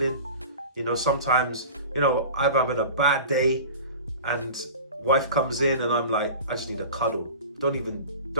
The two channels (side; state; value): both; inverted; correlation -0.37